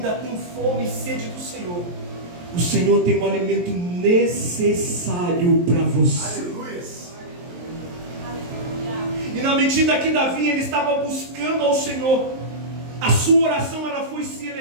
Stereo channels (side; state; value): left; late; 23 ms